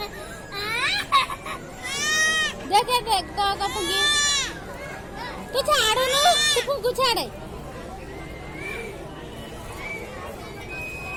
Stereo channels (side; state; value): both; identical; correlation 1.00